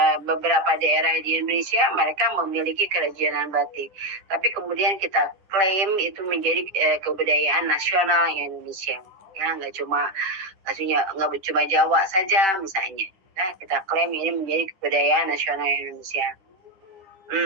Beberapa daerah di Indonesia mereka memiliki kerajinan batik. Tapi kemudian kita klaim itu menjadi kebudayaan nasional Indonesia. Ya, nggak cuma Jawa saja misalnya. Nah, kita klaim ini menjadi kebudayaan nasional Indonesia.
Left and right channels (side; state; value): left; late; 10 ms